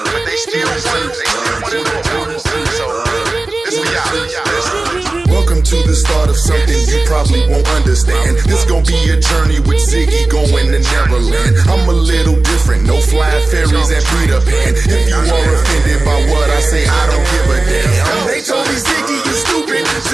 But they still want to know. So, this we out. Welcome to the start of something you probably won't understand. This gon' be a journey with Ziggy going to Neverland. I'm a little different, no flying fairies and Peter Pan. If you are offended by what I say, I don't give a damn. They told me, Ziggy, you stupid.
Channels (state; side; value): quieter; left; 3.1 dB